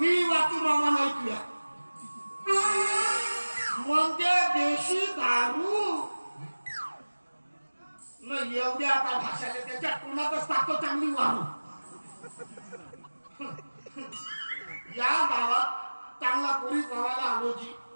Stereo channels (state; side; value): inverted; both; correlation -1.00